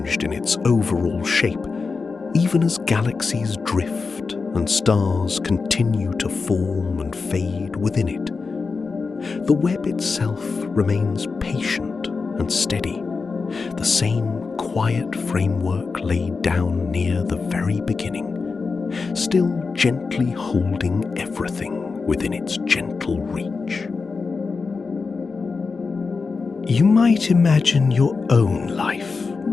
in its overall shape, even as galaxies drift and stars continue to form and fade within it. The web itself remains patient and steady, the same quiet framework laid down near the very beginning, still gently holding everything within its gentle reach. You might imagine your own life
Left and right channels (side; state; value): right; quieter; 4.6 dB